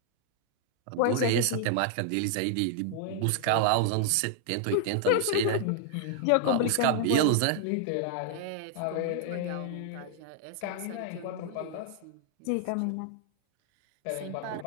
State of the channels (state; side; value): different; both; correlation 0.00